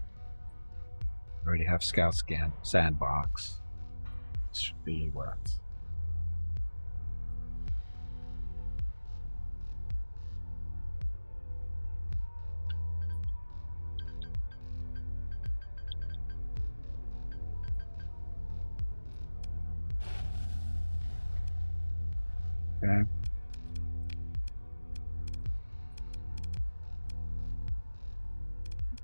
Already have Scout Scan Sandbox. This should be what? Okay.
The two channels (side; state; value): both; inverted; correlation -1.00